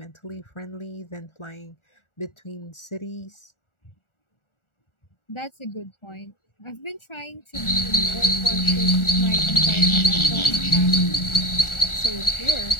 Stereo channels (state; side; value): late; right; 1.4 ms